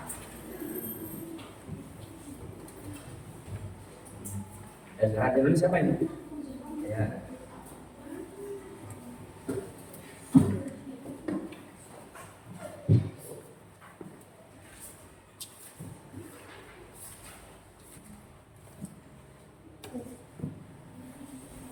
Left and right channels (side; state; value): both; identical; correlation 1.00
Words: Ya, sekarang dulu siapa ini? Ya.